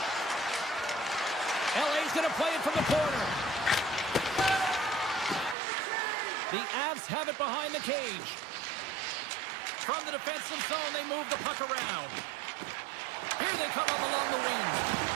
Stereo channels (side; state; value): left; drops out; at 5.6 s